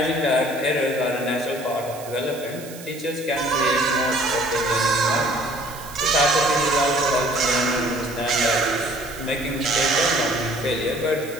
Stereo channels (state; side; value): noise; right; hiss, 16 dB below the sound